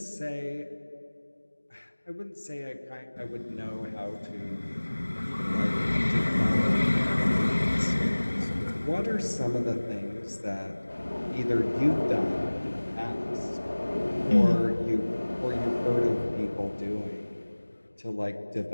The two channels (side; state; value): both; inverted; correlation -1.00